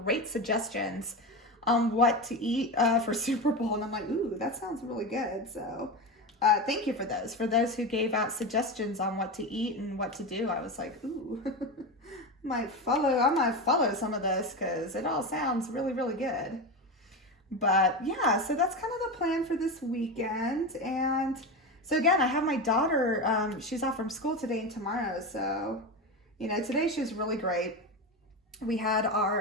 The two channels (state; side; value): normal; both; correlation 0.20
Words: suggestions on what to eat for Super Bowl. And I'm like, ooh, that sounds really good. So thank you for those. For those who gave out suggestions on what to eat and what to do, I was like, ooh, I might follow some of this because it all sounds really, really good. But yeah, so that's kind of the plan for this weekend. And so again, I have my daughter, she's off from school today and tomorrow. So, you know, today she was really great. We had